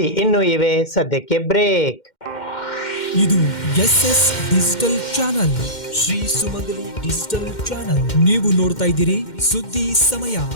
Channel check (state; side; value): late; right; 2.1 ms